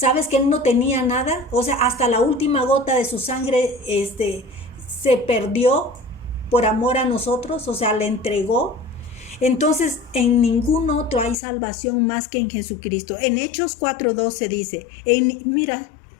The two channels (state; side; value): drops out; right; at 11.4 s